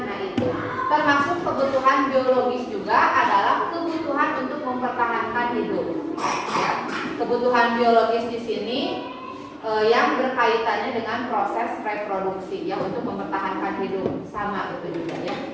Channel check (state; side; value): identical; both; correlation 1.00